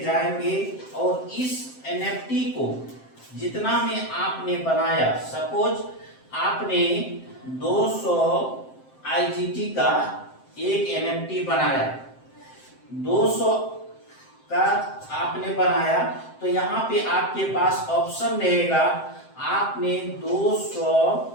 जाएंगे और इस एनएफटी को जितना में आपने बनाया, सपोज आपने 200 आईजीटी का एक एनएफटी बनाया, 200 का आपने बनाया, तो यहाँ पे आपके पास ऑप्शन रहेगा, आपने 200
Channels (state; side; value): late; right; 7.7 ms